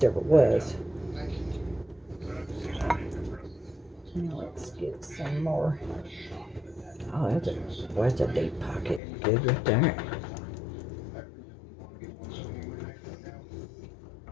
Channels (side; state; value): right; drops out; at 9.0 s